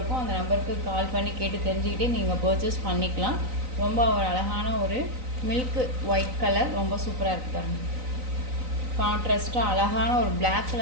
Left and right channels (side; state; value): left; late; 3.9 ms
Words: அந்த நம்பருக்கு கால் பண்ணி கேட்டு தெரிஞ்சுக்கிட்டே நீங்கள் பர்ச்சேஸ் பண்ணிக்கலாம். ரொம்ப ஒரு அழகான ஒரு மில்க் ஒயிட் கலர், ரொம்ப சூப்பராக இருக்குது பாருங்கள். கான்ட்ராஸ்ட்டாக அழகான ஒரு பிளாக்